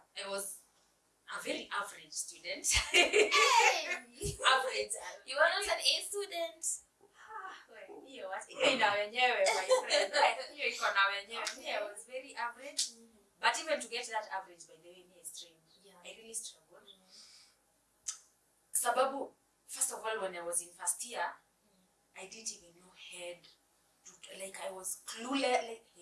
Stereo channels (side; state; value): both; identical; correlation 1.00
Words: was a very average student. Hey! Average. You are not an A student. Hiyo ina wenyewe my friend. Hiyo iko na wenyewe. I was very average. But even to get that average, by the way, me is trained. I really struggled. Sababu, first of all, when I was in first year, I didn't even know head to, like I was clueless, like